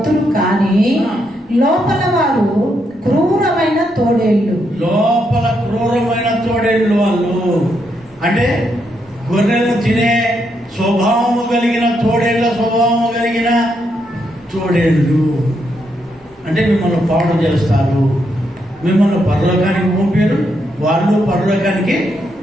కానీ లోపల వారు క్రూరమైన తోడేళ్ళు. లోపల క్రూరమైన తోడేళ్ళు. వాళ్ళు అంటే గొర్రెలను తినే స్వభావము కలిగిన తోడేళ్ళ స్వభావము కలిగిన తోడేళ్ళు. అంటే మిమ్మల్ని పాడు చేస్తారు, మిమ్మల్ని పరలోకానికి పంపారు, వాళ్ళు పరలోకానికి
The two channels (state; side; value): normal; both; correlation 0.79